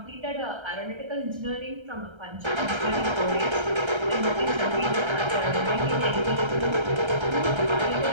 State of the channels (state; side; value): late; left; 1.3 ms